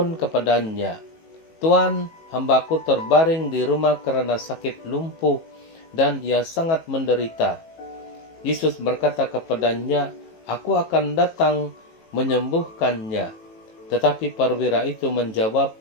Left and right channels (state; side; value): late; right; 18 ms